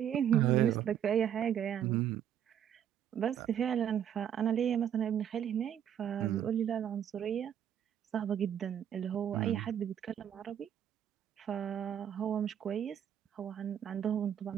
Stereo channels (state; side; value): quieter; left; 9.5 dB